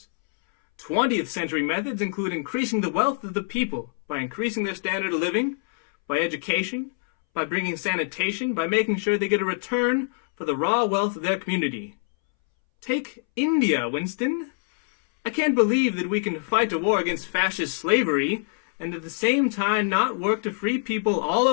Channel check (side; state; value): right; silent; 62 dB below the other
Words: 20th century methods include increasing the wealth of the people by increasing their standard of living, by education, by bringing sanitation, by making sure they get a return for the raw wealth of their community. Take India, Winston. I can't believe that we can fight a war against fascist slavery and at the same time not work to free people all